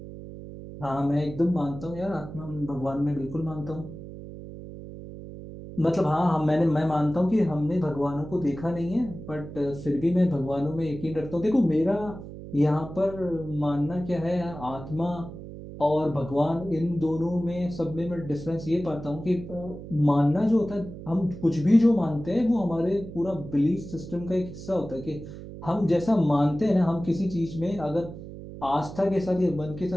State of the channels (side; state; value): right; noise; hum, 12 dB below the sound